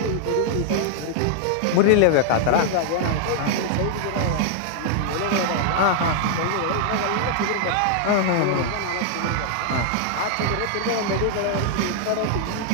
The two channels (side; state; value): both; different; correlation -0.01